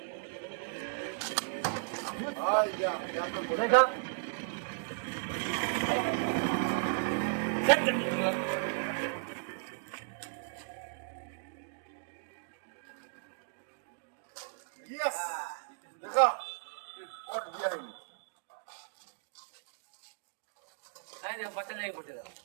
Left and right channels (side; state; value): left; silent; digital silence